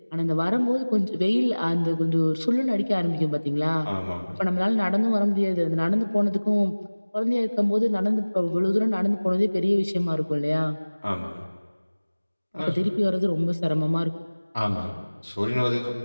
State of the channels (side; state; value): both; inverted; correlation -1.00